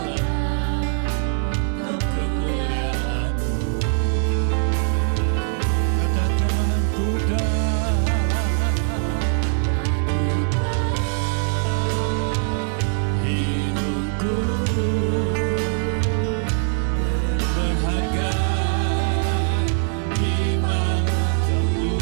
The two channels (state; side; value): silent; left; digital silence